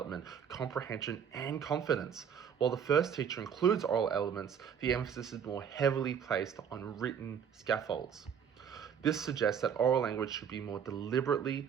comprehension, and confidence. While the first teacher includes oral elements, the emphasis is more heavily placed on written scaffolds. This suggests that oral language should be more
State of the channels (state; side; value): quieter; left; 7.8 dB